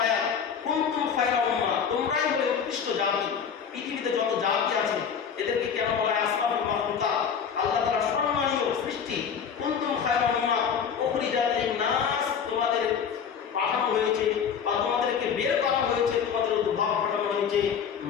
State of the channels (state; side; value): quieter; right; 7.2 dB